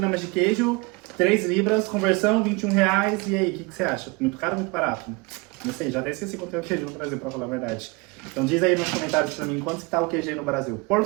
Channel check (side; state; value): left; quieter; 26.9 dB